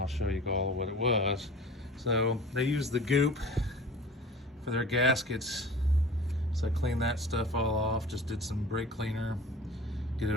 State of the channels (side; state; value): both; normal; correlation 0.41